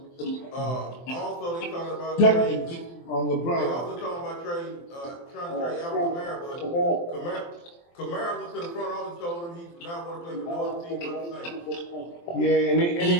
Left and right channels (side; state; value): right; late; 23 ms